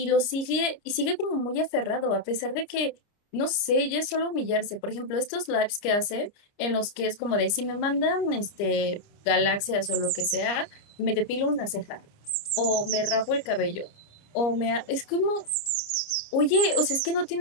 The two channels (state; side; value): late; right; 29 ms